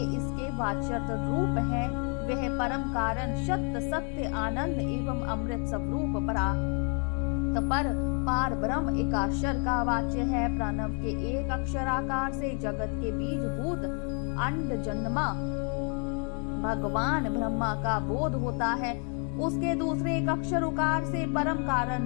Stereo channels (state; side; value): quieter; right; 39.0 dB